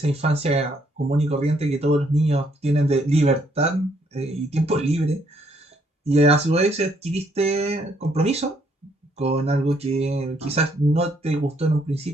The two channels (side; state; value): both; normal; correlation 0.70